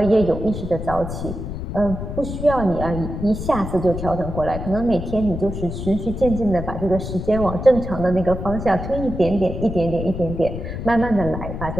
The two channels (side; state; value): left; noise; rumble, 6 dB below the sound